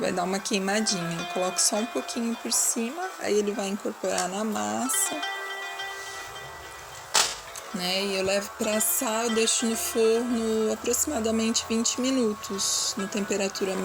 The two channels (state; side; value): identical; both; correlation 1.00